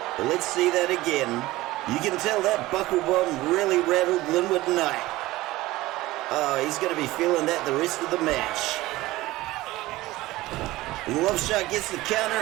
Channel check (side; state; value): left; quieter; 18.1 dB